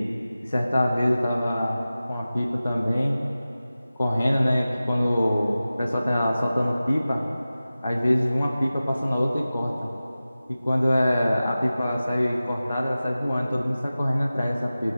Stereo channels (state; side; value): inverted; both; correlation -0.96